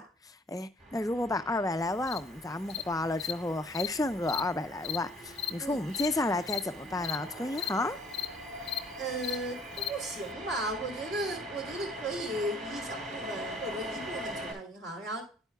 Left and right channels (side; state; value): both; normal; correlation 0.58